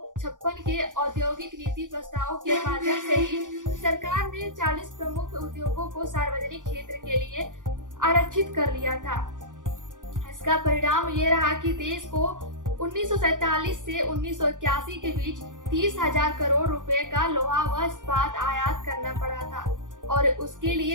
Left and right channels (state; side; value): late; left; 0.88 ms